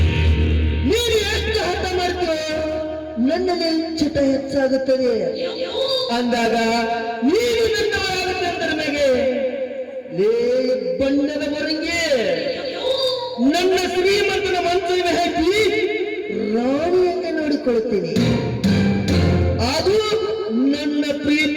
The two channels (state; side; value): identical; both; correlation 1.00